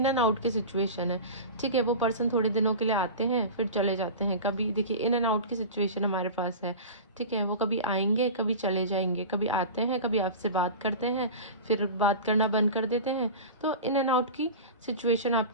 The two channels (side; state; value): both; inverted; correlation -0.31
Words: एंड आउट की सिचुएशन है। ठीक है, वो पर्सन थोड़े दिनों के लिए आते हैं फिर चले जाते हैं। कभी देखिए इन एंड आउट की सिचुएशन हमारे पास है। ठीक है, वो कभी आएंगे कभी चले जाएंगे, कभी आते हैं कभी आपसे बात करते हैं फिर बात करना बंद कर देते हैं। तो इन एंड आउट की सिचुएशन